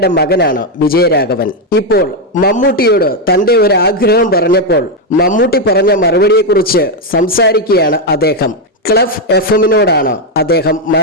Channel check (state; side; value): normal; both; correlation 0.04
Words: മകനാണ് വിജയരാഘവൻ. ഇപ്പോൾ മമ്മൂട്ടിയോട് തന്റെ ഒരു ആഗ്രഹം പറഞ്ഞപ്പോൾ മമ്മൂട്ടി പറഞ്ഞ മറുപടിയെക്കുറിച്ച് സംസാരിക്കുകയാണ് അദ്ദേഹം. ക്ലഫ് FM-നോടാണ് അദ്ദേഹം